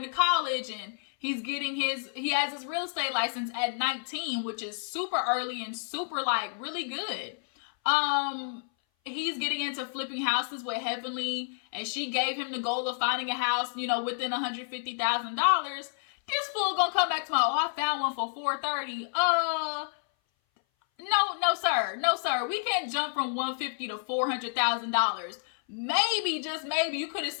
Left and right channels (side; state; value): right; silent; 57 dB below the other